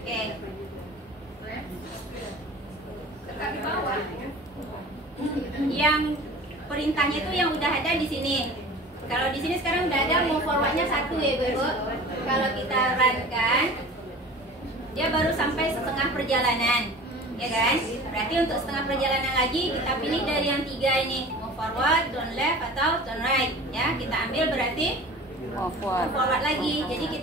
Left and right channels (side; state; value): both; normal; correlation 0.40